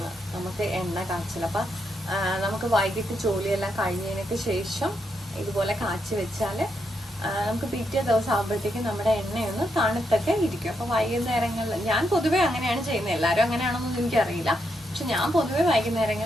നമുക്ക് എണ്ണ കാച്ചൽ. അപ്പം നമുക്ക് വൈകിട്ട് ജോലിയെല്ലാം കഴിഞ്ഞതിനൊക്കെ ശേഷം ഇതുപോലെ കാച്ചി വെച്ചാൽ നമുക്ക് പിറ്റേ ദിവസം ആകുമ്പോഴത്തേക്കും നമ്മുടെ എണ്ണയൊന്ന് തണുത്തൊക്കെ ഇരിക്കും. അപ്പോൾ വൈകുന്നേരങ്ങളിൽ ഞാൻ പൊതുവെ അങ്ങനെയാണ് ചെയ്യുന്നത്. എല്ലാവരും അങ്ങനെയാണെന്നൊന്നും എനിക്കറിയില്ല. പക്ഷെ ഞാൻ പൊതുവെ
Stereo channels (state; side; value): normal; both; correlation 0.81